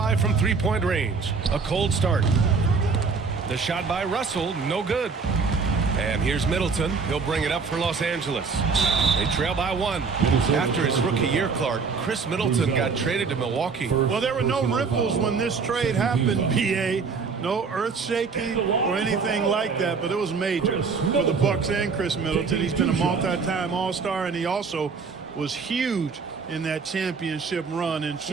from three-point range. A cold start. The shot by Russell, no good. And here's Middleton. He'll bring it up for Los Angeles. They trail by 1. After his rookie year, Clark, Chris Middleton got traded to Milwaukee. Well, there were no ripples when this trade happened, BA. No earth shaking or anything like that, but it was major for the Bucks and Chris Middleton. He's been a multi-time All-Star, and he also was huge in that championship run in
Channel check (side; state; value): left; quieter; 5.0 dB